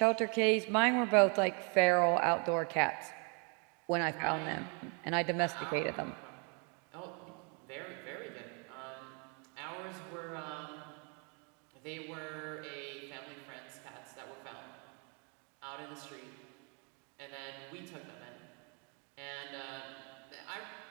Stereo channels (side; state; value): left; quieter; 35.7 dB